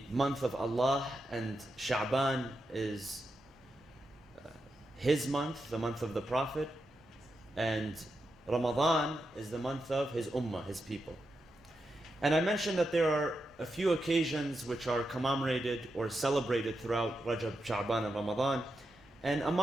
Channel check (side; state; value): both; normal; correlation 0.87